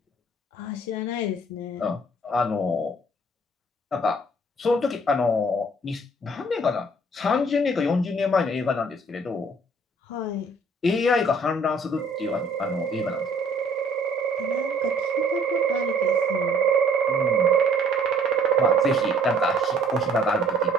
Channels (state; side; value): normal; both; correlation 0.58